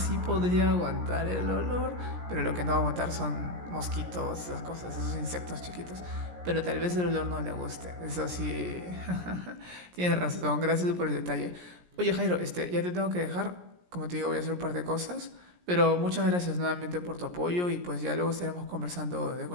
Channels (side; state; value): left; late; 17 ms